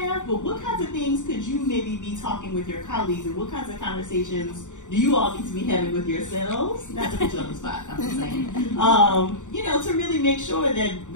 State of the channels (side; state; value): right; late; 0.86 ms